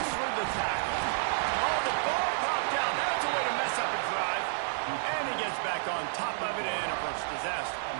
through the tackle. Oh, the ball popped out. That's a way to mess up a drive. And he gets back on top of it, and a first disaster.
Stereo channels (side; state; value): left; silent; 57 dB below the other